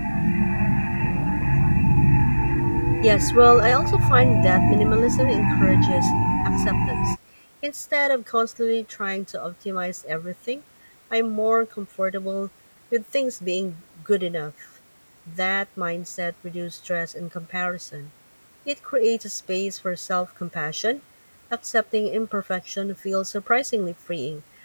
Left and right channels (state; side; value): inverted; both; correlation -1.00